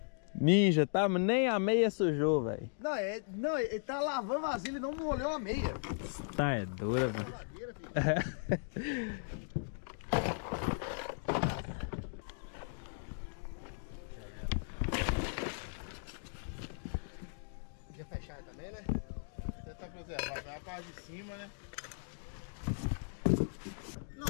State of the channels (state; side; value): silent; right; digital silence